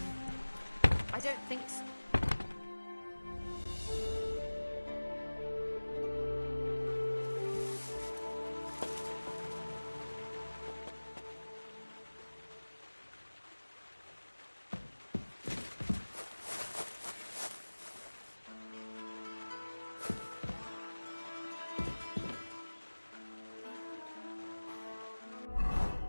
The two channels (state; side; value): inverted; both; correlation -1.00